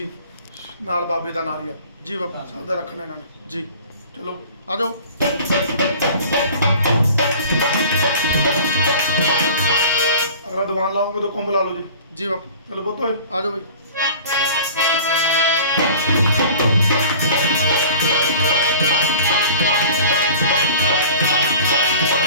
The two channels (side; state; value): both; inverted; correlation -0.43